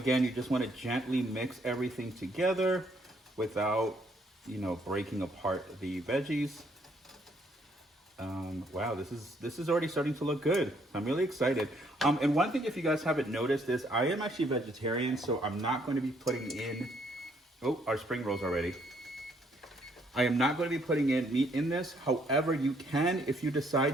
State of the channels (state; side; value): normal; both; correlation 0.68